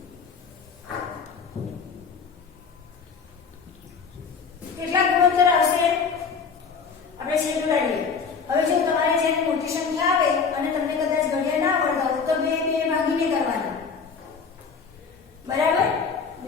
કેટલા ગુણોત્તર આવશે? આપણે છેદ ઉડાડીએ. હવે જો તમારે જેની મોટી સંખ્યા આવે અને તમને કદાચ ઘડિયા ના આવડતા હોય તો 2 ભાગીને કરવાના. બરાબર?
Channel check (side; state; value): right; quieter; 5.6 dB